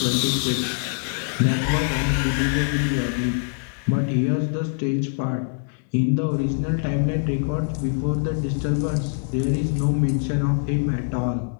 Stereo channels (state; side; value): silent; right; 59 dB below the other